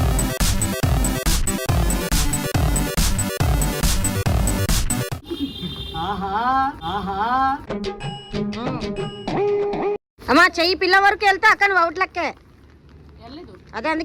అమ్మా చెయ్యి పిల్ల వరకు వెళ్తే అక్క నువ్వు అవుట్ లెక్కే. వెళ్ళలేదు అదే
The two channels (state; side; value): identical; both; correlation 1.00